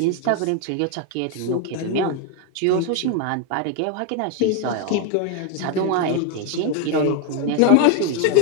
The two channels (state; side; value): different; both; correlation 0.01